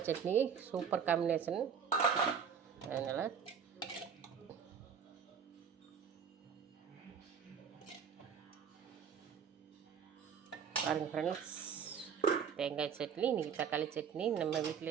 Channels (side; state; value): left; quieter; 7.0 dB